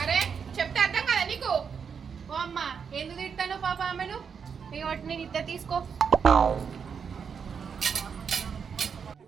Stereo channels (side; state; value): left; quieter; 6.5 dB